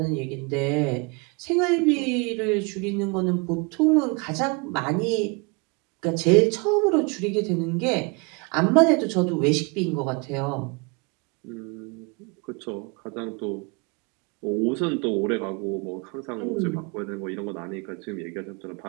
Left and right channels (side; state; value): left; quieter; 30.5 dB